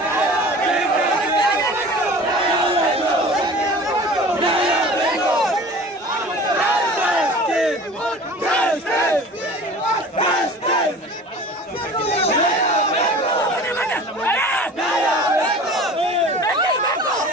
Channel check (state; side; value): normal; both; correlation 0.41